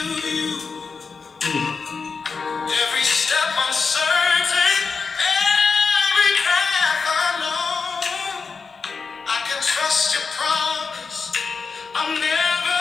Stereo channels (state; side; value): quieter; right; 5.0 dB